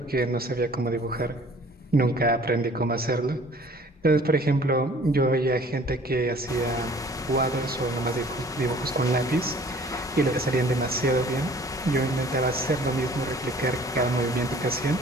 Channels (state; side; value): normal; both; correlation 0.52